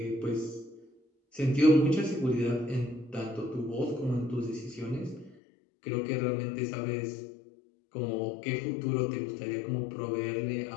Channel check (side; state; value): right; drops out; at 5.4 s